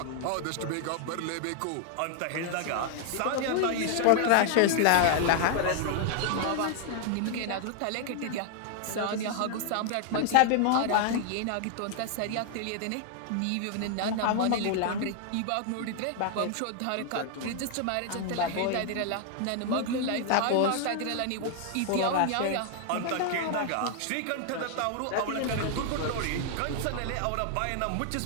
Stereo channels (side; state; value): both; different; correlation 0.00